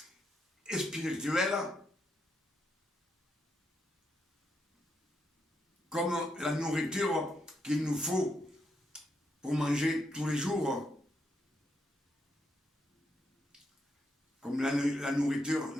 spirituelle, comme la nourriture qu'il nous faut pour manger tous les jours. comme la nourriture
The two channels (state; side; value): normal; both; correlation 0.80